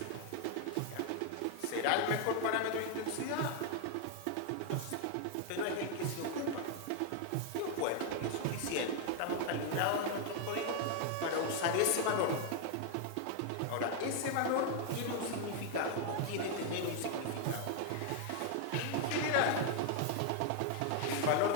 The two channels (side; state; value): both; different; correlation 0.00